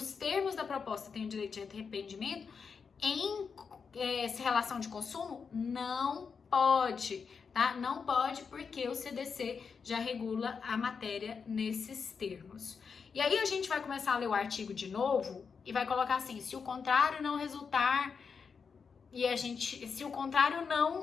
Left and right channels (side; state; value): right; quieter; 5.8 dB